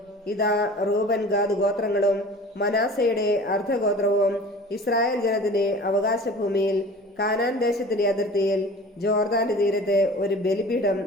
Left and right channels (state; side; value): normal; both; correlation 0.42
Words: ഇതാ റൂബൻ ഗാദ് ഗോത്രങ്ങളും മനാസയുടെ അർദ്ധഗോത്രവും ഇസ്രായേൽ ജനത്തിന്റെ അവകാശഭൂമിയിൽ കാനാൻ ദേശത്തിന്റെ അതിർത്തിയിൽ ജോർദാന്റെ തീരത്ത് ഒരു ബലിപീഠം